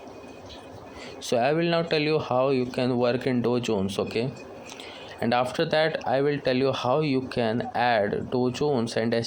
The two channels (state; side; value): identical; both; correlation 1.00